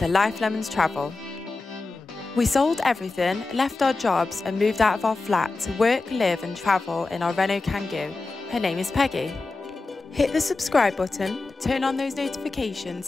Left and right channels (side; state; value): right; quieter; 3.6 dB